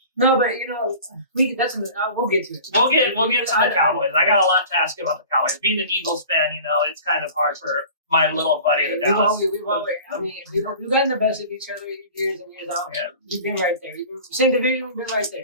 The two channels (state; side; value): inverted; both; correlation -0.41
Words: No, but we'll get to it. We'll get to the Cowboys. I got a lot to ask you about the Cowboys. Being an Eagles fan, it's kind of hard for my little buddy, the Dallas. We've gotten the best of each other years and years out. Yeah. We've been right there. Same division, we've been right